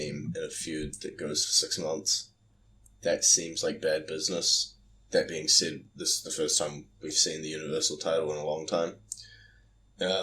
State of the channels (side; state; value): both; identical; correlation 1.00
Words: in a feud that goes for 6 months. That seems like bad business. That being said, this is the first time we've seen the Universal title in a long time.